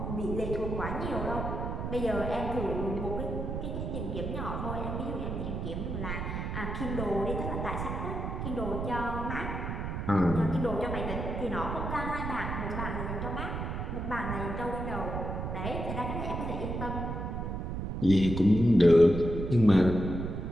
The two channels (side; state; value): right; noise; rumble, 4 dB below the sound